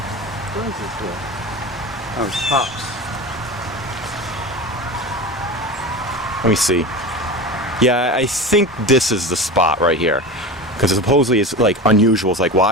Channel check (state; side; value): normal; both; correlation 0.28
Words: is this here? Oh, it's hops. Let me see. Yeah, I think this is the spot right here. Because supposedly it's like unusual. It's like,